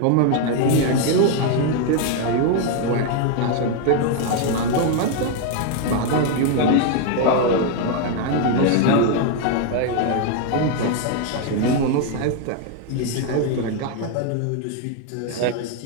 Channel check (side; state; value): both; different; correlation 0.01